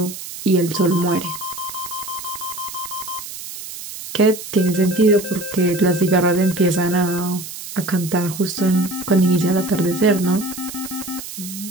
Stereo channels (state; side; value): noise; right; hiss, 11 dB below the sound